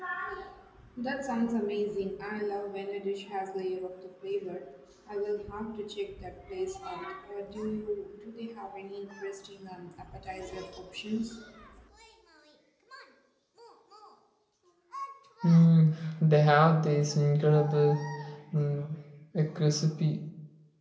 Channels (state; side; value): identical; both; correlation 1.00